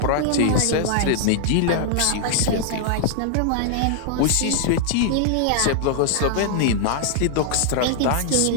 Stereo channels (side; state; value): both; different; correlation 0.00